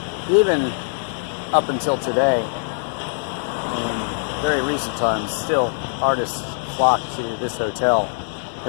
even up until today, in very recent times, still artists flock to this hotel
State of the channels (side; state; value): right; silent; digital silence